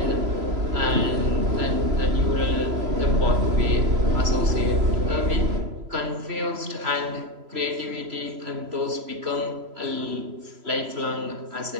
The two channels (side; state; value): left; late; 3.0 ms